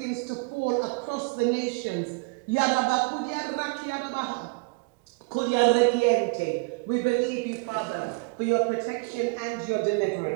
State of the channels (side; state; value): left; quieter; 30.2 dB